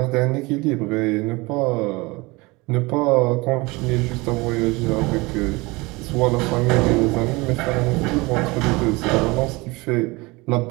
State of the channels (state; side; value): quieter; left; 23.9 dB